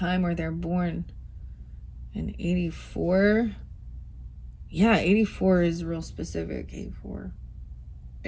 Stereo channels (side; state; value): both; identical; correlation 1.00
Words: where they're born in 84. Yeah, 84 is real specific, 84.